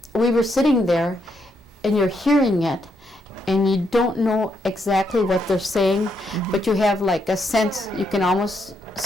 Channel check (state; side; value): normal; both; correlation 0.78